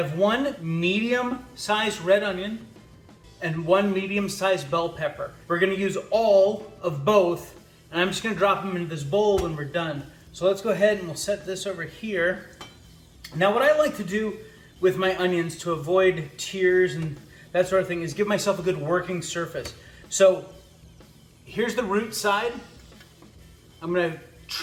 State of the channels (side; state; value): both; identical; correlation 1.00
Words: one medium-sized red onion and one medium-sized bell pepper. We're going to use all of both. And I'm just going to drop them into this bowl when we're done. So let's go ahead and we'll set this over here. Now what I like to do with my onions to avoid tears and that sort of thing is give myself a good working surface. So here's the root side. I'm going to